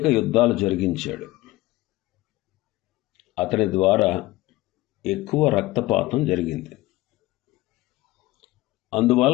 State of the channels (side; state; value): right; quieter; 18.6 dB